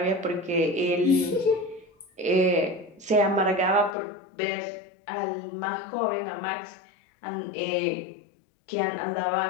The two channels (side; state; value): right; drops out; at 4.0 s